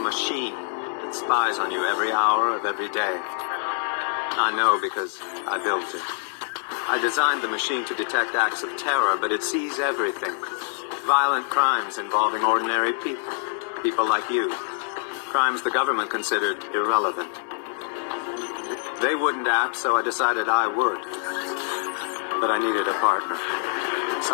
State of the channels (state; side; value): silent; right; digital silence